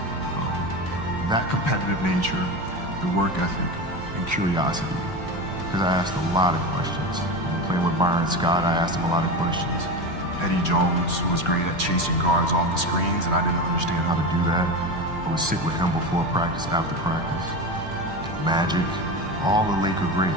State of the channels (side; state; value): both; normal; correlation 0.22